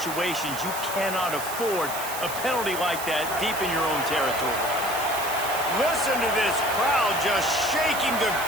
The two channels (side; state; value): right; noise; hiss, 8 dB below the sound